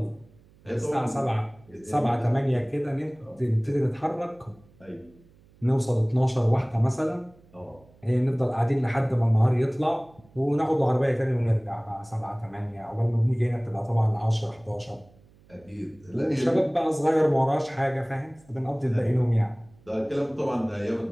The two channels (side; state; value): right; noise; hum, 28 dB below the sound